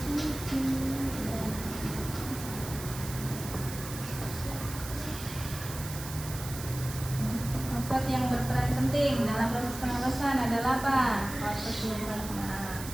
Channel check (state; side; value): noise; right; hiss, 11 dB below the sound